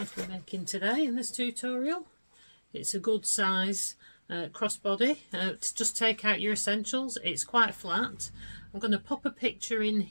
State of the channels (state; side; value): inverted; both; correlation -1.00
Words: to be making today in this tutorial. It's a good size crossbody. To just take out your essentials, it's quite flat. I'm going to pop a picture in